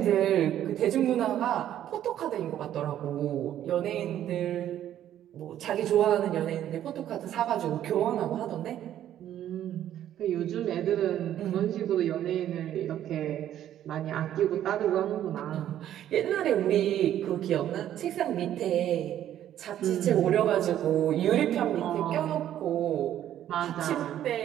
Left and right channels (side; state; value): left; quieter; 11.4 dB